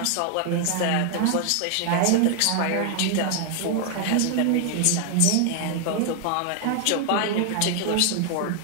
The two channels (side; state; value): both; different; correlation 0.00